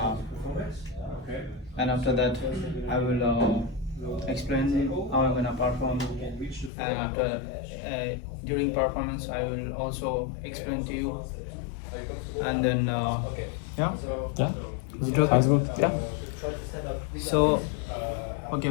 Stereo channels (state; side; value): drops out; right; at 6.7 s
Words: and after that, I will explain how I'm gonna perform, and after during performance, I will also explain to you, and then yeah. Yeah. Is it okay? Sounds good. Yeah. So, okay,